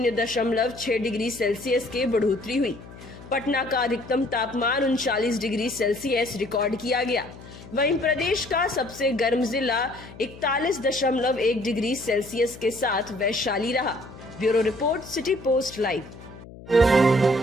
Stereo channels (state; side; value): noise; left; hum, 17 dB below the sound